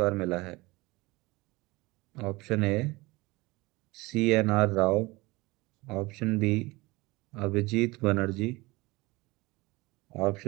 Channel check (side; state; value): left; quieter; 22.4 dB